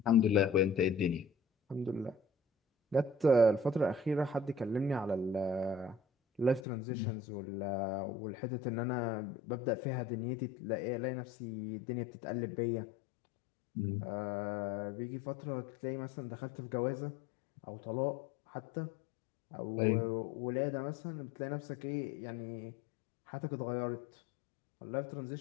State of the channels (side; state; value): right; drops out; at 6.7 s